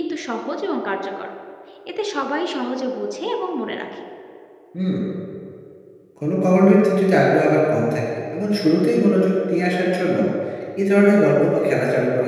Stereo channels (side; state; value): both; identical; correlation 1.00